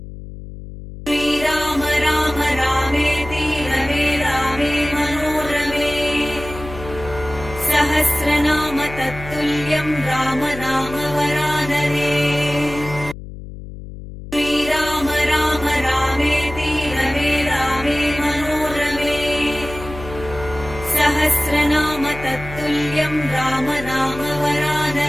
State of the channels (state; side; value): noise; left; hum, 12 dB below the sound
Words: तत्तुल्यं राम नाम वरानरे श्रीराम राम रामेति रमे रामे मनोरमे सहस्रनाम तत्तुल्यं राम नाम